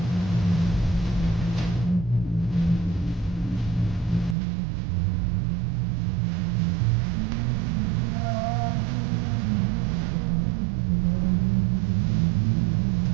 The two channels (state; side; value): drops out; left; at 4.4 s